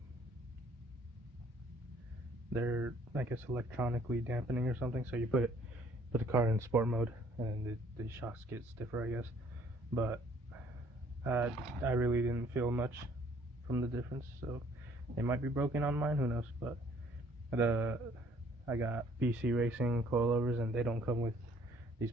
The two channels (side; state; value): both; normal; correlation 0.60